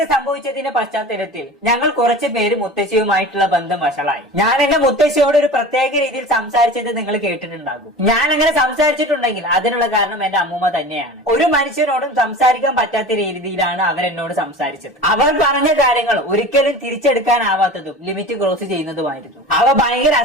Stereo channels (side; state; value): both; normal; correlation 0.35